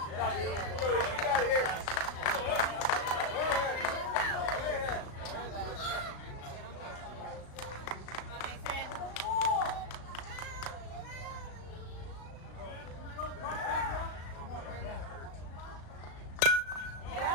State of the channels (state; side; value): late; right; 36 ms